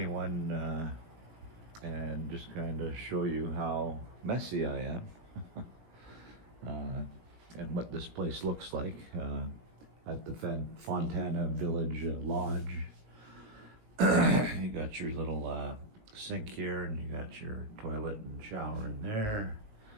and just kind of show you how messy I am uh, and what this place looks like at the Fontana Village Lodge. You got your little sink here, and you got your toilet and shower in there.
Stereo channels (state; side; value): late; left; 19 ms